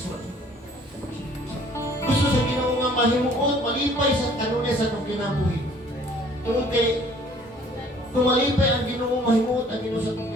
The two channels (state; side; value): normal; both; correlation 0.55